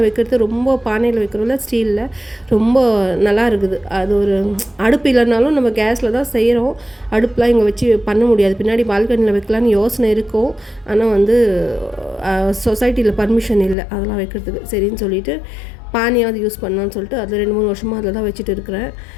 வைக்கிறது, ரொம்ப பானையில் வைக்கிறோம்ல ஸ்டீலில், ரொம்ப நல்லா இருக்குது. அது ஒரு அடுப்பு இல்லைனாலும் நம்ம கேஸில் தான் செய்கிறோம். அடுப்புலாம் இங்கே வச்சு பண்ண முடியாது. பின்னாடி பால்கனியில் வைக்கலான்னு யோசனை இருக்கும். ஆனால் வந்து சொசைட்டியில் பர்மிஷன் இல்லை அதெல்லாம் வைக்கிறதுக்கு. சரின்னு சொல்லிவிட்டு பானையாவது யூஸ் பண்ணலான்னு சொல்லிட்டு அதில் 2-3 வருஷமாக அதில் தான் வச்சுட்டு இருக்கிறேன்.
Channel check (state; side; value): drops out; right; at 13.8 s